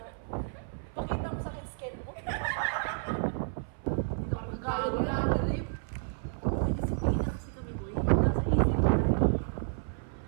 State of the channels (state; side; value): silent; left; 57 dB below the other